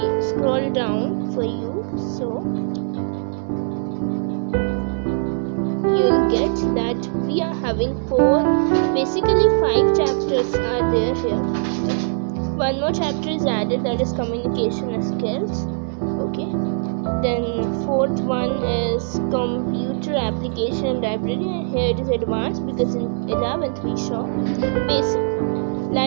scroll down for you, so you'll get that we are having 5 chapters are there here. One more chapter is added, that is communication skills. Okay, then 4th one is computer application library, and here it is advanced because in 11th we saw basic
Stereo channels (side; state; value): left; silent; digital silence